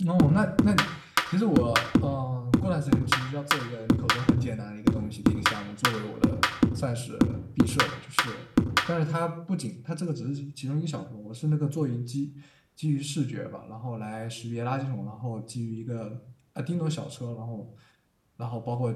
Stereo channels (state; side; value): identical; both; correlation 1.00